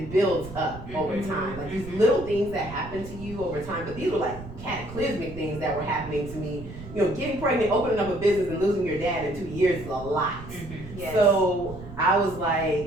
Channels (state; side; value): noise; right; rumble, 13 dB below the sound